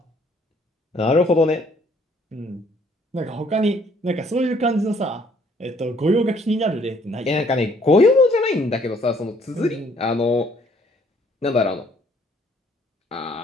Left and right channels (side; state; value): both; normal; correlation 0.63